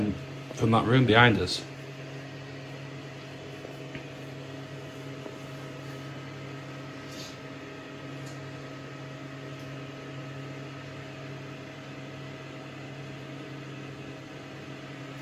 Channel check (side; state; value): right; noise; hum, 30 dB below the sound